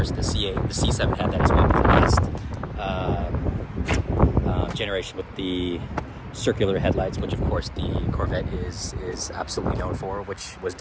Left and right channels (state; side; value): identical; both; correlation 1.00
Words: The C8, the C7 had that as well, but the last generation with the circular headlights, which of course the Corvette is absolutely known for, which was